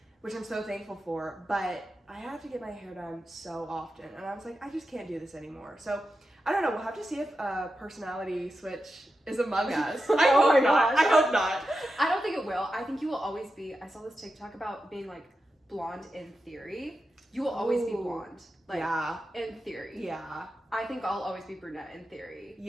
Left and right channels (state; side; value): normal; both; correlation 0.90